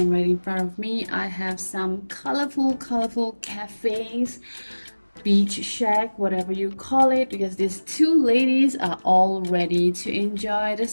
right in front of me I have some colorful cafes, beach shack, whatever you call it, because these two ladies are all ready to enjoy the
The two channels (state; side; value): inverted; both; correlation -1.00